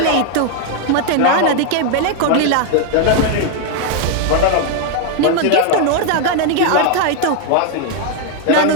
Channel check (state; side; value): different; both; correlation 0.00